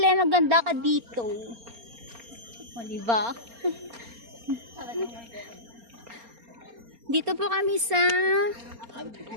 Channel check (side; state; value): left; late; 4.3 ms